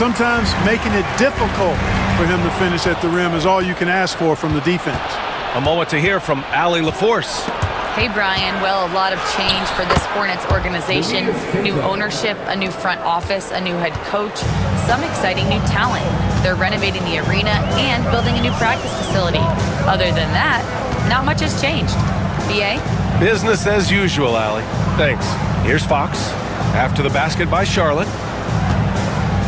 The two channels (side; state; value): both; identical; correlation 1.00